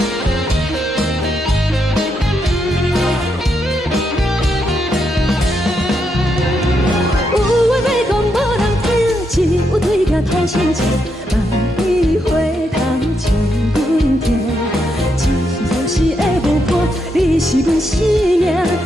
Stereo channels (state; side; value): normal; both; correlation 0.80